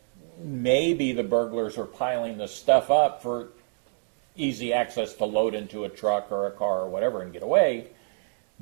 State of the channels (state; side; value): silent; left; digital silence